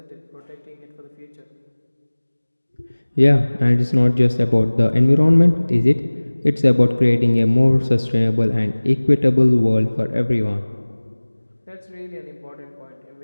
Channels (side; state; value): both; inverted; correlation -1.00